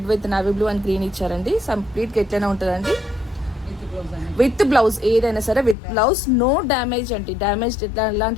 with navy blue and green ఇచ్చారండి. కంప్లీట్గా ఎట్లయినా ఉంటుందండి. విత్ బ్లౌజ్, ఏదైనా సరే విత్ బ్లౌజ్, నో డ్యామేజ్ అండి.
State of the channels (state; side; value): drops out; right; at 5.8 s